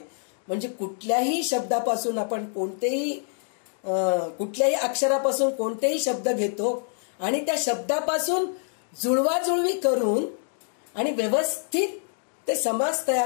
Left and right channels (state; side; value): silent; right; digital silence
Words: म्हणजे कुठल्याही शब्दापासून आपण कुठल्याही अक्षरापासून कोणतेही शब्द घेतो आणि त्या शब्दापासून जुळवाजुळवी करून आणि व्यवस्थित ते समास